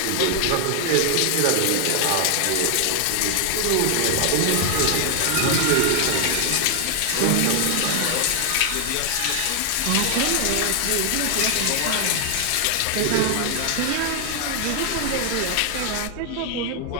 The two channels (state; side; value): different; both; correlation 0.00